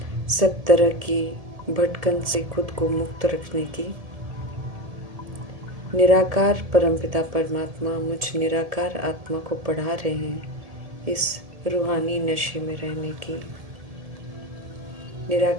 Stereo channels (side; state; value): left; late; 1.7 ms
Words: सब तरह की भटकन से खुद को मुक्त रखने की, निराकार परमपिता परमात्मा मुझ निराकार आत्मा को पढ़ा रहे हैं इस रूहानी नशे में रहने की,